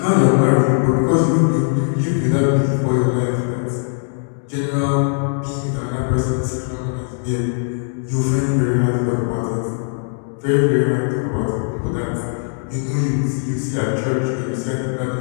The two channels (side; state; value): right; silent; 66 dB below the other